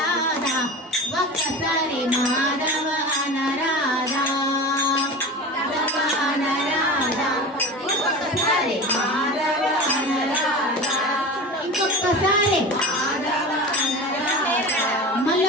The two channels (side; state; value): both; normal; correlation 0.31